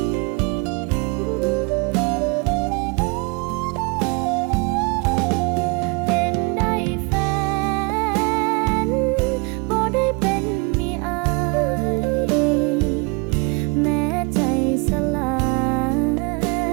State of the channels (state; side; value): quieter; left; 29.4 dB